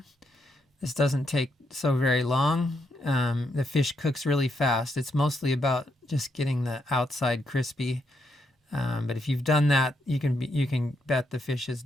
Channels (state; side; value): normal; both; correlation 0.78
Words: This doesn't take so very long. The fish cooks really fast. It's mostly about just getting the outside crispy. But if you've done that, you can bet the fish is